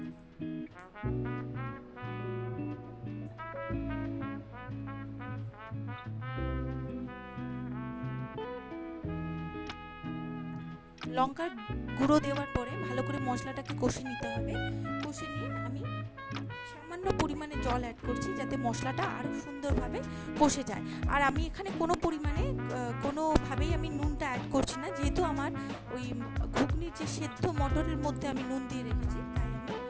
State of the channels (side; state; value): both; identical; correlation 1.00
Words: লঙ্কার গুঁড়ো দেওয়ার পরে ভালো করে মশলাটাকে কষে নিতে হবে। কষে নিয়ে আমি সামান্য পরিমাণে জল অ্যাড করছি, যাতে মশলাটা আরও সুন্দরভাবে কষে যায়। আর আমি এখানে কোনোভাবেই আমি নুনটা অ্যাড করছি না, যেহেতু আমার ওই ঘুগনির যে সেদ্ধ মটরের মধ্যে আমি নুন দিয়ে রেখেছি, তাই আমি